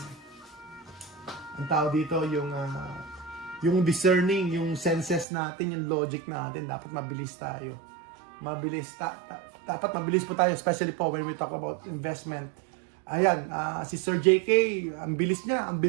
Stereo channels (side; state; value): left; drops out; at 5.2 s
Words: tao dito, yung discerning, yung senses natin, yung logic natin, dapat mabilis tayo. Dapat mabilis po tayo, especially po when we talk about investment. Ayan, si Sir JK, ang bilis niya